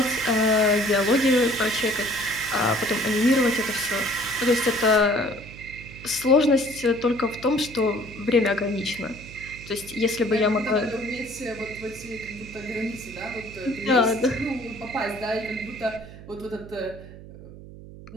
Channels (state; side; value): noise; right; hum, 16 dB below the sound